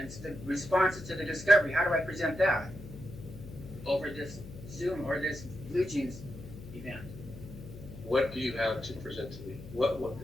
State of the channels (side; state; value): left; noise; hum, 14 dB below the sound